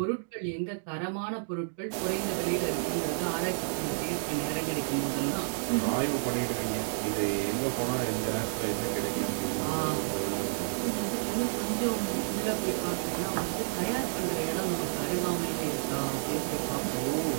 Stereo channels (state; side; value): silent; left; digital silence